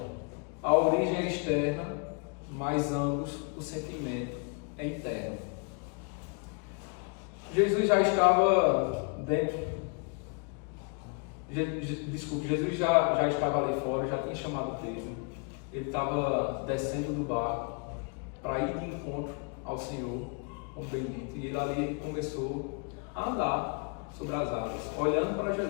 A origem é externa, mas ambos, o sentimento é interno. Jesus já estava dentro. Jesus já estava ali fora, já tinha chamado Pedro. Ele estava descendo do barco para ir de encontro ao Senhor, como bendito. E ele começou a andar sobre as águas, olhando para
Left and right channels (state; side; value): quieter; right; 36.4 dB